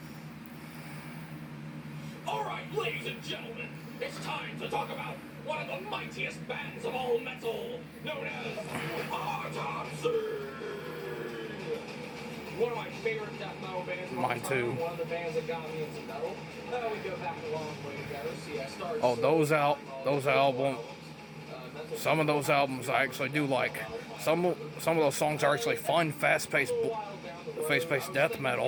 Alright, ladies and gentlemen, it's time to talk about one of the mightiest bands of all metal, known as Autopsy! One of my favorite death metal bands. Mine too. One of the bands that got me into metal. We go back a long way together. See, I started. Oh, those albums. Some of those albums I actually do like. Some of those songs are actually fun, fast-paced death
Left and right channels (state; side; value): identical; both; correlation 1.00